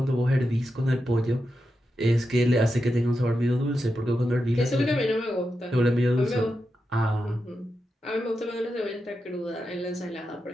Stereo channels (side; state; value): both; normal; correlation 0.88